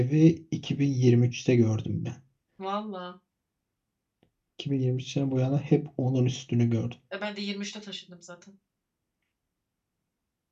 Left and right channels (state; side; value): identical; both; correlation 1.00